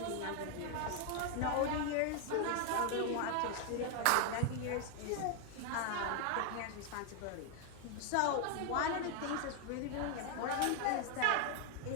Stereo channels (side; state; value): both; different; correlation 0.01